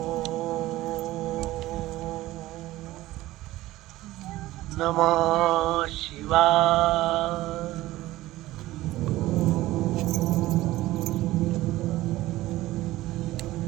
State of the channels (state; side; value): quieter; left; 16.9 dB